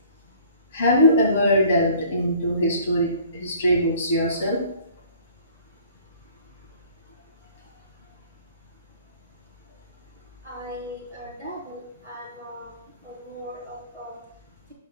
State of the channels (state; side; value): inverted; both; correlation -0.52